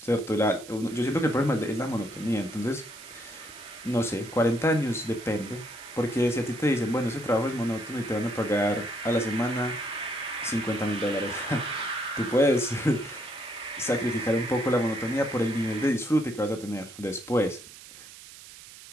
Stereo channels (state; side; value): noise; right; hiss, 17 dB below the sound